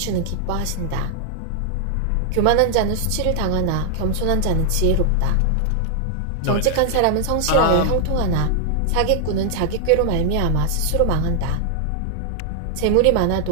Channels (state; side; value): different; both; correlation 0.00